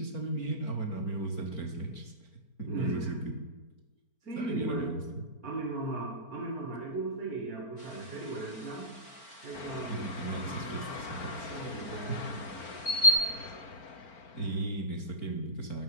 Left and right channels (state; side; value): late; right; 4.4 ms